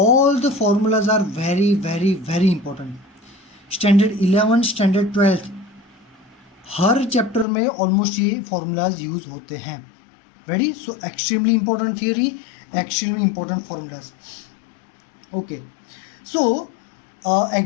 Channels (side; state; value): right; drops out; at 7.5 s